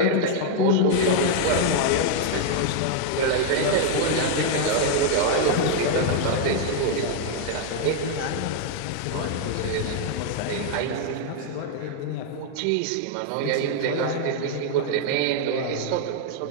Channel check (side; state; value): both; different; correlation 0.00